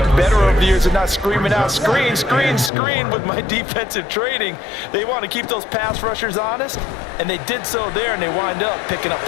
better over the years of not screaming out screen, screen, screen with my defensive training. They want to keep those pass rushers honest, and they did so there, and they wind up picking up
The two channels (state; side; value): drops out; right; at 2.7 s